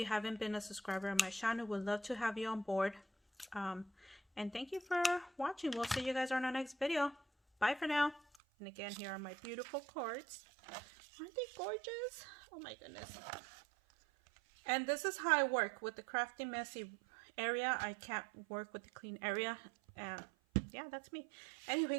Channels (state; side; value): drops out; left; at 8.4 s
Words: haven't been a subscriber on my channel, we'd love to have you on board. And thank you for watching. We'll see you guys on our next video. Bye for now. And again, here are my beautiful cards. Aren't they gorgeous? Oh my goodness. And this is how I work with the crafty messy area. I can't work with the clean area. And yeah, that's me.